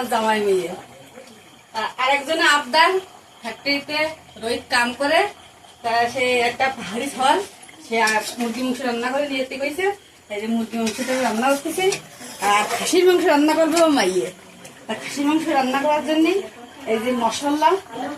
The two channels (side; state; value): both; identical; correlation 1.00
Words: জামাই মেয়ে। আরেকজনে আবদার ফ্যাক্টরিতে রোহিত কাম করে, সে একটা পাহাড়ি ফল সে মুরগি মাংস রান্না করে নিয়ে যেতে কইছে। এই যে মুরগি মাংসটা রান্না করতেছি, আর খাসির মাংস রান্না করবে ও মাইয়ে। খাসির মাংস রান্না করার জন্য এই যে মশলা